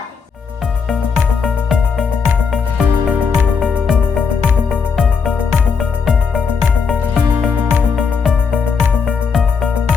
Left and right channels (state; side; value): quieter; right; 5.7 dB